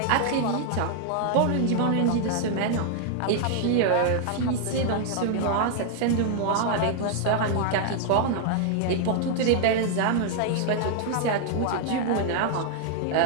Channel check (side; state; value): both; different; correlation -0.01